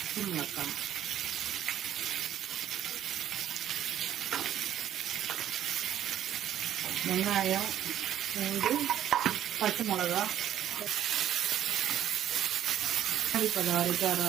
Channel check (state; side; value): quieter; left; 11.1 dB